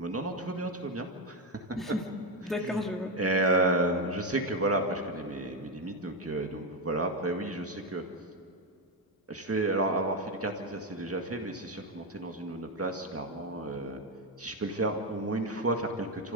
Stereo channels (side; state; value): both; normal; correlation 0.08